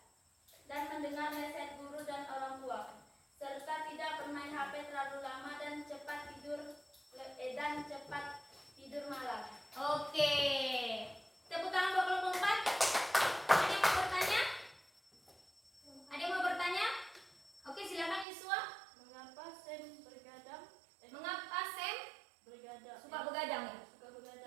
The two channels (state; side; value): drops out; left; at 18.2 s